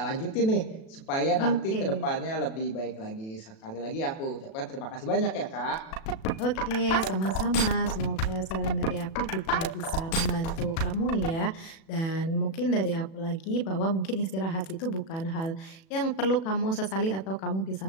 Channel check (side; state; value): right; late; 37 ms